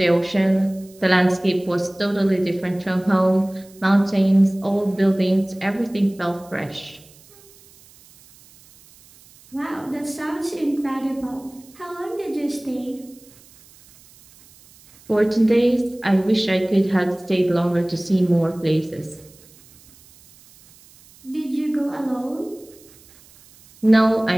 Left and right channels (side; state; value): right; noise; hiss, 26 dB below the sound